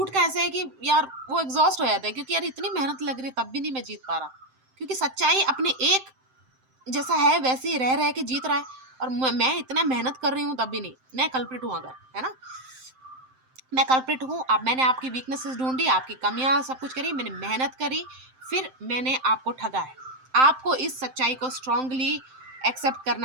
का ऐसा है कि यार वो एग्जॉस्ट हो जाता है, क्योंकि यार इतनी मेहनत लग रही है तब भी नहीं मैं जीत पा रहा, क्योंकि सच्चाई अपने एक जैसा है वैसे ही रह के जीत रहा है, और मैं इतना मेहनत कर रही हूँ तब भी नहीं। मैं कल्प्रिट हूँ अगर, है ना, मैं कल्प्रिट हूँ। अब मैंने आपकी वीकनेसेस ढूंढी, आपकी कमियां सब कुछ करी, मैंने मेहनत करी, फिर मैंने आपको ठगा है। आपको इस सच्चाई को स्ट्रांगली एक्सेप्ट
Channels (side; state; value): left; late; 7.7 ms